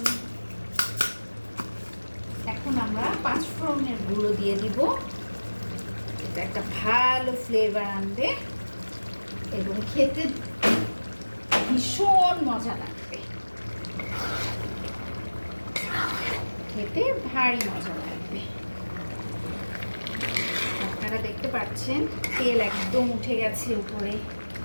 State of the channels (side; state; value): both; inverted; correlation -1.00